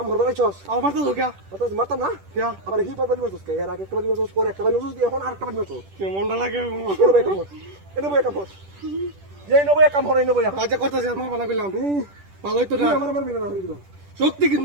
করবা নাইছস আমার তো লোকা অত মারতাম না কিয়া আবার হি পাবলি মারছস কে এর আগে একটা বালি মারছস পরে একটা বালি মারছস এখন আরেকটা বালি মারছস কেমনটা লাগে এটা বই কাম এই নবই কাম হরে নবই আজ করতেছি আমার বানা কইলাম ভালোই তো না আমার বিনা না হই দিল শক্তি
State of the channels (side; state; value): left; late; 10 ms